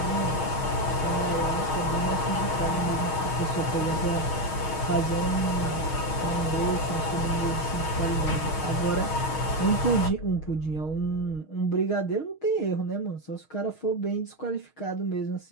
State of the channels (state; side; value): late; right; 6.4 ms